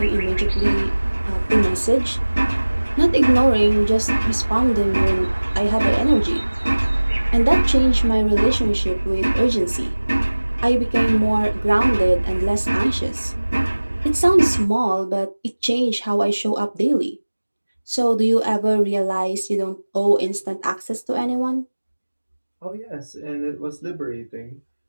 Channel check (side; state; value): both; inverted; correlation -1.00